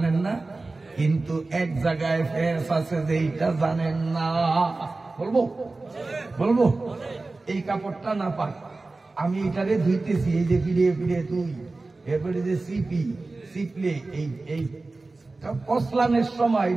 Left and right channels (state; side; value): quieter; left; 3.4 dB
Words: না? কিন্তু এক জায়গায় ফেস আছে যে এইটা জানেন না। বলবো এই কাপড়টা নাপাক, আমি এটারে ধুইতেছি, এই যে ফিরে ফিরে তুই, এরপরে যে সিপলে এই কসলানের সময়,